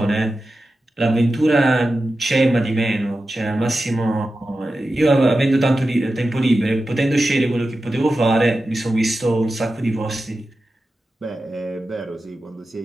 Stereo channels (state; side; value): normal; both; correlation 0.92